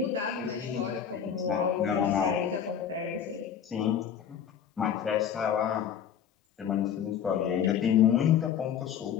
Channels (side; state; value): right; quieter; 8.5 dB